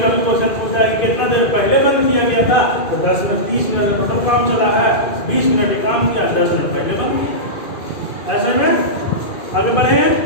कभी क्वेश्चन पूछा है कितना देर पहले बंद किया गया था, तो 10 मिनट 30 मिनट का टोटल काम चला है, 20 मिनट काम किया, 10 मिनट पहले बंद किया। ऐसे में आगे बढ़े हैं,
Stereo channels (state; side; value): late; right; 2.4 ms